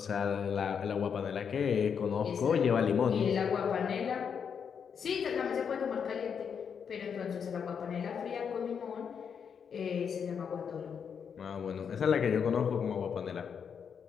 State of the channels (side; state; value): right; quieter; 7.0 dB